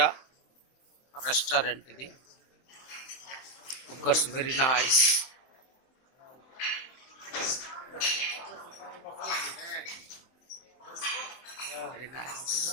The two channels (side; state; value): right; late; 23 ms